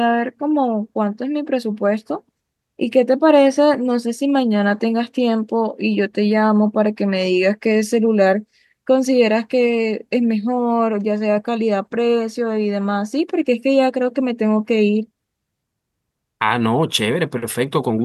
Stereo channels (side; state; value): both; identical; correlation 1.00